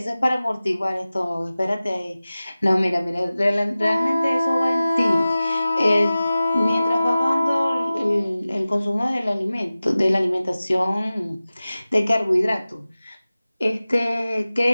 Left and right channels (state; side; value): inverted; both; correlation -0.96